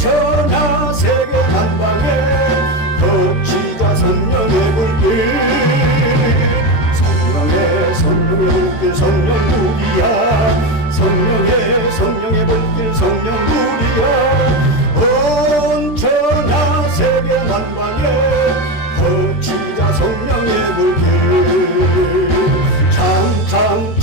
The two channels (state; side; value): late; right; 14 ms